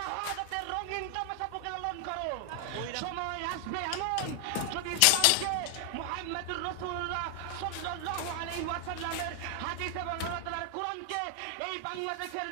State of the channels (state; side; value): different; both; correlation 0.00